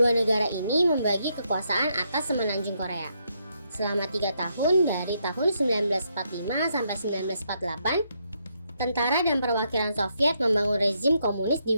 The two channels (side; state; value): both; inverted; correlation -0.77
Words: negara ini membagi kekuasaan atas semenanjung Korea. Selama 3 tahun dari tahun 1945 sampai 1948, tentara dan perwakilan Soviet membangun rezim komunis di